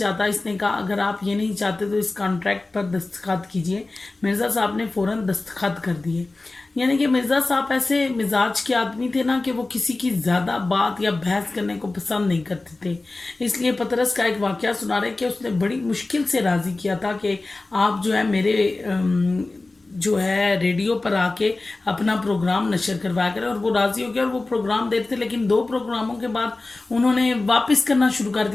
इसने कहा अगर आप ये नहीं चाहते तो इस कॉन्ट्रैक्ट पर दस्तखत कीजिए। मिर्ज़ा साहब ने फ़ौरन दस्तखत कर दिए। यानी कि मिर्ज़ा साहब ऐसे मिजाज के आदमी थे ना कि वो किसी की ज़्यादा बात या बहस करने को पसंद नहीं करते थे। इसलिए पतरस का एक वाक़या सुना रहे कि उसने बड़ी मुश्किल से राज़ी किया था कि आप जो है मेरे जो है रेडियो पर आके अपना प्रोग्राम नशर करवाया करें। और वो राज़ी हो गया और वो प्रोग्राम देते थे। लेकिन दो प्रोग्रामों के बाद उन्होंने वापस करना शुरू कर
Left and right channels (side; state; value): right; quieter; 3.2 dB